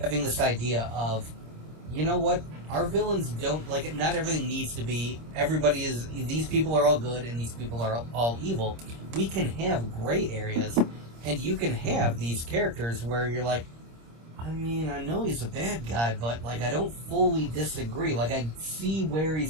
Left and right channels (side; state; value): left; late; 26 ms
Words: having this idea of, you know what, our villains don't, like, not everything needs to be, these people are all good and these people are all evil. We can have gray areas, and you can have these characters where you're like, I mean, I know he's a bad guy, but, like, I don't fully disagree. Like, I see where